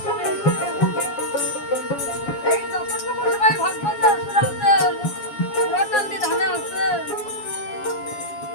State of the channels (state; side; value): late; right; 7.2 ms